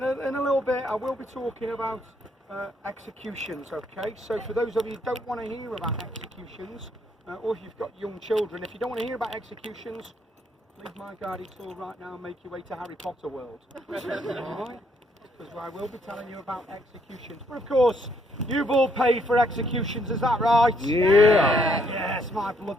a little bit I will be talking about executions, okay? So for those of you who don't want to hear about executions, or if you've got young children, if you don't want to hear about executions, leave my guided tour right now and make your way to Harry Potter world. Alright? Because I will be telling you about executions. But of course, you've all paid for executions, is that right? Yeah. Yes, my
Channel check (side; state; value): both; normal; correlation 0.70